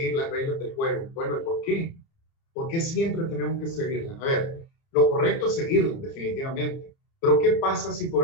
las reglas del juego. Bueno, ¿y por qué? ¿Por qué siempre tenemos que seguirlas? A ver, lo correcto es seguirlas, definitivamente. Pero ¿qué pasa si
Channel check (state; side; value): late; right; 30 ms